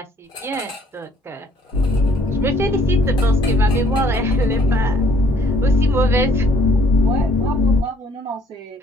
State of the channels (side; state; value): both; normal; correlation 0.62